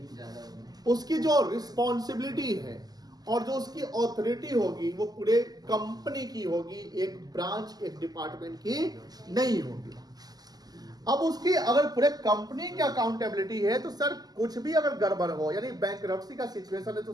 उसकी जो रिस्पॉन्सिबिलिटी है, और जो उसकी ऑथोरिटी होगी वो पूरे कंपनी की होगी, एक ब्रांच, एक डिपार्टमेंट की नहीं होगी। अब उसकी अगर पूरे कंपनी की अकाउंटेबिलिटी है तो सर कुछ भी अगर गड़बड़ हो, यानी बैंकरप्सी का सिचुएशन है, तो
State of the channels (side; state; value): left; late; 0.19 ms